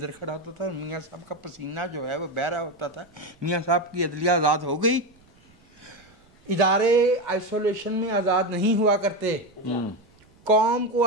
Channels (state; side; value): noise; right; rumble, 30 dB below the sound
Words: खड़ा होता था, मियां साहब का पसीना जो है वो बह रहा होता था। मियां साहब की अदलिया आज़ाद हो गई। इदारे आइसोलेशन में आज़ाद नहीं हुआ करते, कौम को